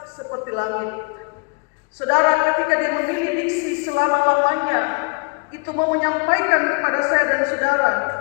seperti langit. Saudara, ketika dia memilih diksi selama-lamanya, itu mau menyampaikan kepada saya dan saudara,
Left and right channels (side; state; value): right; quieter; 33.5 dB